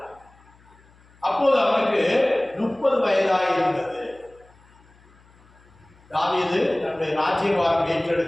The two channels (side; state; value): left; noise; hum, 29 dB below the sound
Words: அப்போது அவனுக்கு 30 வயதாய் இருந்தது. தாவீது தன்னுடைய ராஜ்யபாரம்